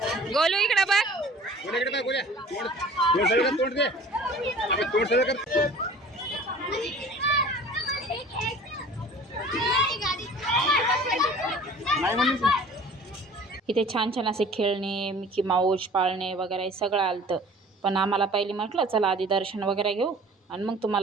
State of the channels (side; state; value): both; normal; correlation 0.46